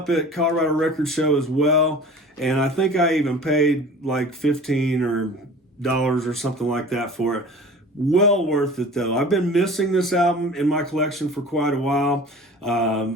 at Colorado Record Show as well. And I think I even paid like $15 or something like that for it. Well worth it though. I've been missing this album in my collection for quite a while. I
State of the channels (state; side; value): normal; both; correlation 0.42